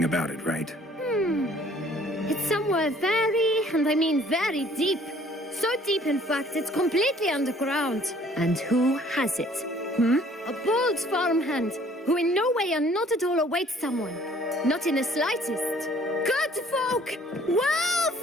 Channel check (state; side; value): normal; both; correlation 0.57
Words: about it, right? It's somewhere very, and I mean very deep. So deep, in fact, it's completely underground. And who has it? A bold farmhand, who in no way and not at all awaits someone. Not in the slightest. Good folk! Wolf!